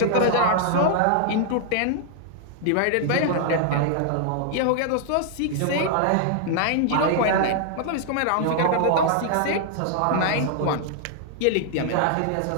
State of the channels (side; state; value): both; different; correlation -0.01